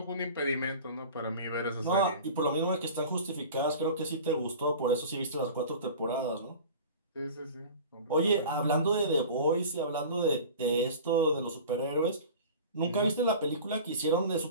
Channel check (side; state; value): both; inverted; correlation -0.39